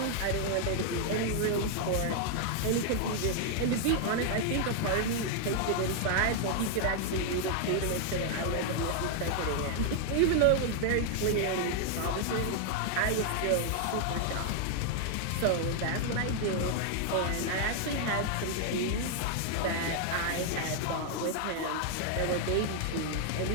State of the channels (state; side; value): different; both; correlation 0.00